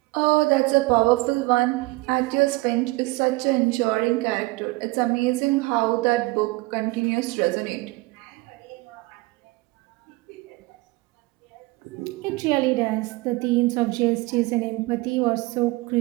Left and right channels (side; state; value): left; quieter; 22.7 dB